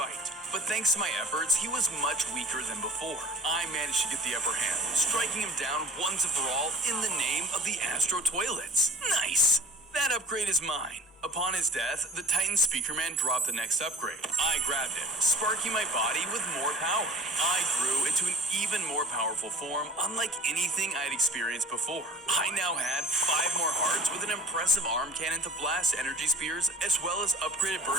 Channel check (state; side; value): normal; both; correlation 0.43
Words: But thanks to my efforts, he was much weaker than before. I managed to get the upper hand, striking him down once and for all in the name of the Astro Toilets. Nice! That upgrade is mine. Upon his death, the Titan Speaker Man dropped the next upgrade. I grabbed it, sparking my body with more power. I grew into an even more powerful form, unlike anything I'd experienced before. I now had 5 more hearts with an impressive arm cannon to blast energy spears, as well as upgraded